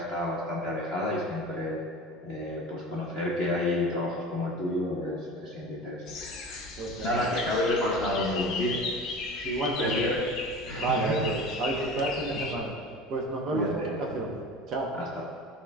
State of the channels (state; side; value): normal; both; correlation 0.36